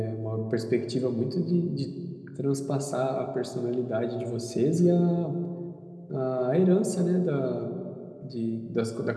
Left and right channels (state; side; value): identical; both; correlation 1.00